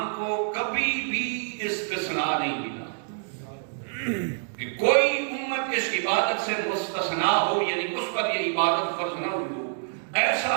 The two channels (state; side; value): silent; left; digital silence